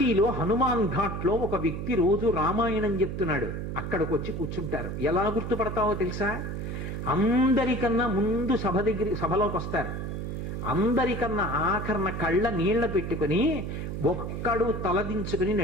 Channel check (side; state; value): right; noise; hum, 5 dB below the sound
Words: హనుమాన్ ఘాట్లో ఒక వ్యక్తి రోజు రామాయణం చెప్తున్నాడు. అక్కడికి వచ్చి కూర్చుంటారు. ఎలా గుర్తుపడతావో తెలుసా? అందరికన్నా ముందు సభలోకి వస్తారు. అందరికన్నా ఆఖరణ కళ్ళ నీళ్ల పెట్టుకుని ఒక్కడు తలదించుకుని